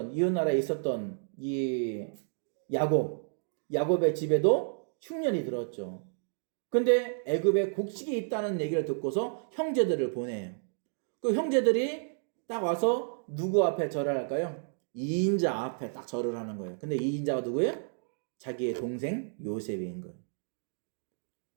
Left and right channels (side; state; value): left; silent; digital silence